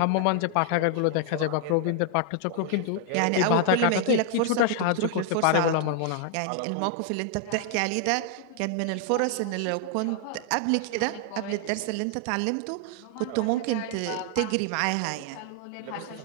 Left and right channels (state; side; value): different; both; correlation 0.00